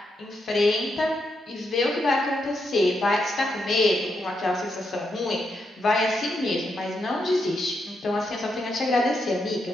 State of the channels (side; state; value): both; normal; correlation 0.82